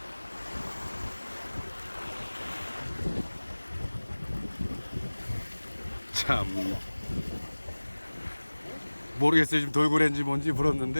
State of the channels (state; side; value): inverted; both; correlation -1.00